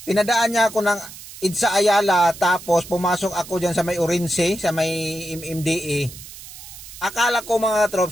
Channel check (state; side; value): noise; right; hiss, 15 dB below the sound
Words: pinadaan niya ako ng Idsa Ayala, tapos pumasok ako dyan sa may Orense, sa may MMDA. Akala ko mga